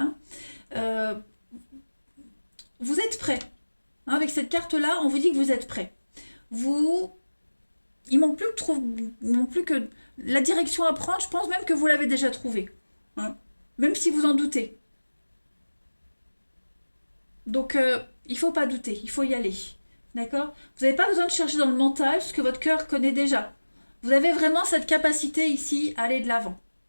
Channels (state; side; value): inverted; both; correlation -1.00